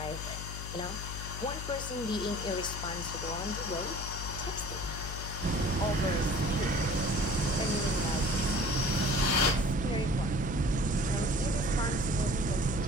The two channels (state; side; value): noise; left; hum, 7 dB below the sound